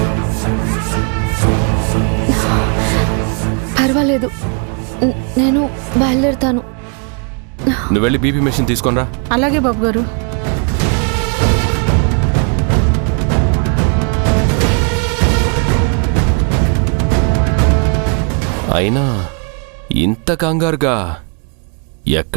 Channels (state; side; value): quieter; left; 38.8 dB